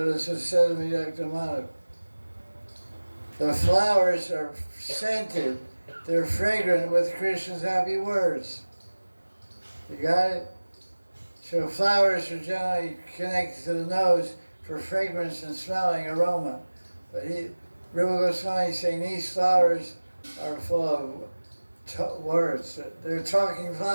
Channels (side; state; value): both; inverted; correlation -1.00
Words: Dr. Madhav. The flowers are scented. They're fragrant with Krishna's happy words. You got it? So flowers are generally connected to the nose for fragrance and smelling aroma. But Rupa Goswami is saying these flowers are full of words. They're talking